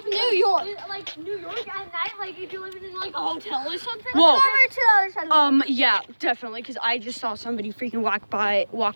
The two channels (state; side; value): inverted; both; correlation -1.00